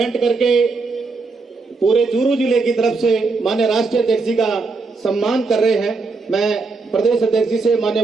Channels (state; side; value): quieter; left; 4.1 dB